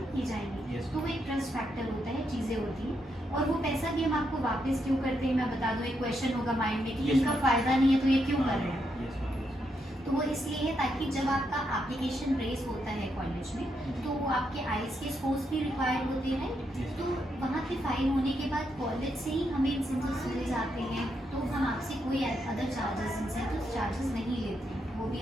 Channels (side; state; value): both; normal; correlation 0.80